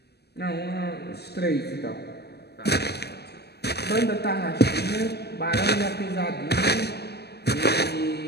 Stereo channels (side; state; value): right; late; 0.47 ms